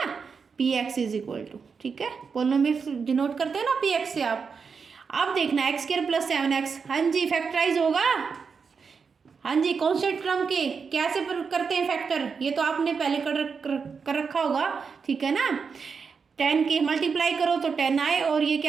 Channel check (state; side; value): quieter; left; 5.6 dB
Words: p x is equal to, ठीक है, पोलिनोमियल डिनोट करते हैं ना पी एक्स से आप। अब देखना एक्स स्क्वायर प्लस 7x, हाँ जी फैक्टराइज होगा, हाँ जी, कांस्टेंट टर्म के कैसे करते हैं फैक्टर, ये तो आपने पहले कर रखा होगा, ठीक है ना। 10 के मल्टीप्लाई करो तो 10 आए, और ये